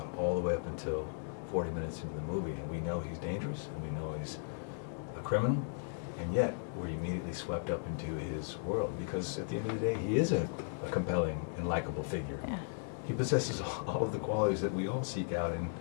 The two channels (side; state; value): right; silent; digital silence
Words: all the way up until 40 minutes into the movie, and we know he's dangerous, and we know he's a criminal, and yet we're immediately swept up into his world, because at the end of the day, he is a compelling and likable figure. Yeah. He possesses all of the qualities that we all seek out